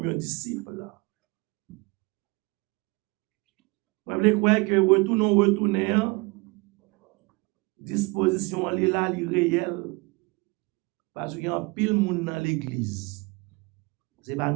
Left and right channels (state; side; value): quieter; left; 26.6 dB